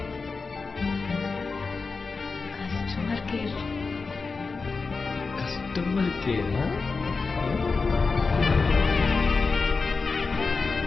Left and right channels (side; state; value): right; quieter; 4.4 dB